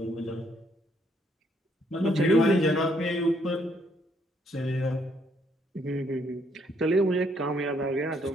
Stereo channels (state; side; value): normal; both; correlation 0.70